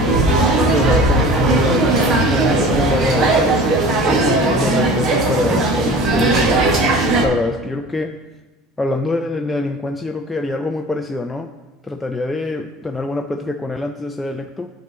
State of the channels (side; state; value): both; normal; correlation 0.42